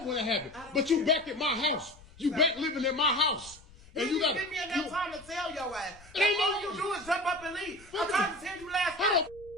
when it happened. But you back at my house. You back living in my house. And you got give me enough time to tell your ass. It ain't All no- you do is jump up and leave. I tried to tell you last How time.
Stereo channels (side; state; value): left; noise; rumble, 23 dB below the sound